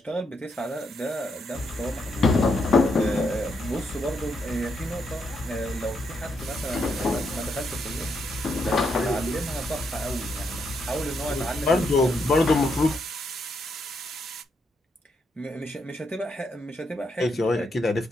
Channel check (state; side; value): normal; both; correlation 0.79